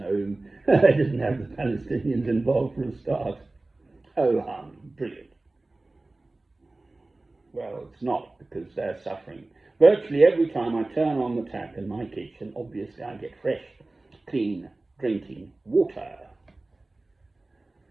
They didn't have the Palestinians involved for a start. Oh, brilliant. Well, it's not, because they're suffering. Virtually every time I turn on the tap in my kitchen, obviously I get fresh, clean, drinking water.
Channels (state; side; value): quieter; left; 3.0 dB